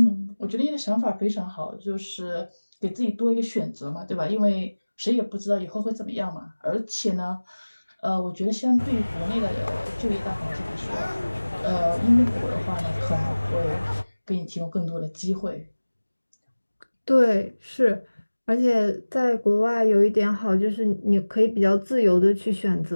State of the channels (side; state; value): both; inverted; correlation -1.00